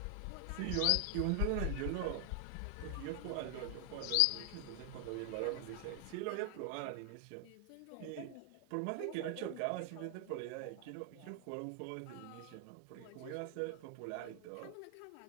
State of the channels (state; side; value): different; both; correlation 0.00